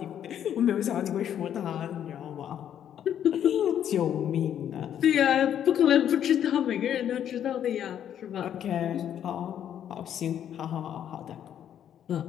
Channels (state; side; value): quieter; right; 9.8 dB